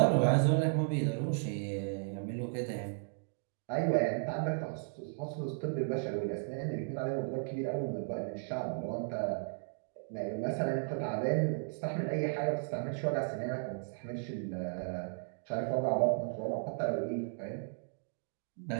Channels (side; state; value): left; silent; digital silence